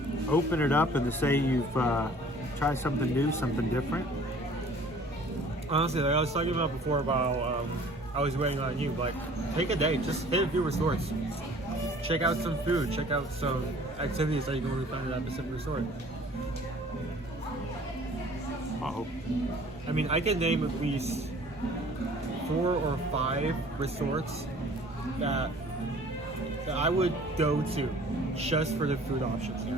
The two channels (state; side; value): normal; both; correlation 0.51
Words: open it up and to say you've tried something new, something different. Honestly, like I was talking about before about I was waiting on you. Like, take a day, just hit a few resorts. Check out some food, check out some activities that you can only find at that specific resort. Uh-oh. I mean, I can name at least 4 or 5 resorts that I would go to just for the food options